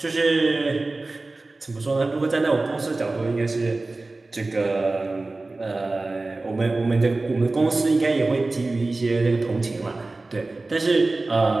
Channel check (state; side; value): quieter; left; 3.2 dB